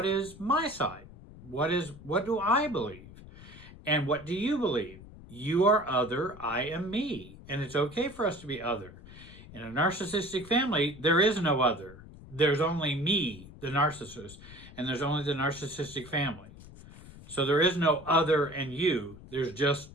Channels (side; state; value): left; noise; rumble, 18 dB below the sound